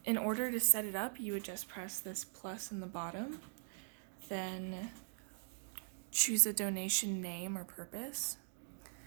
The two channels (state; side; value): silent; left; digital silence